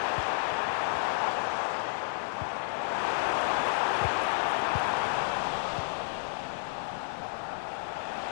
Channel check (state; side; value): silent; right; 57 dB below the other